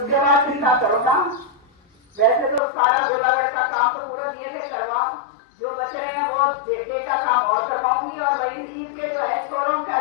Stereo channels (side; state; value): right; drops out; at 2.6 s